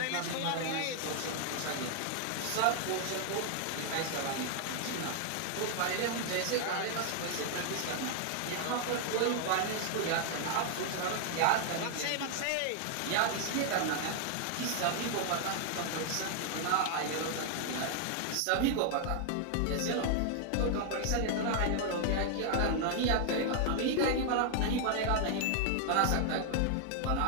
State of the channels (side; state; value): both; different; correlation 0.00